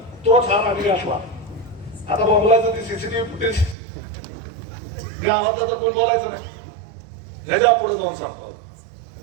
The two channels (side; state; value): left; drops out; at 3.8 s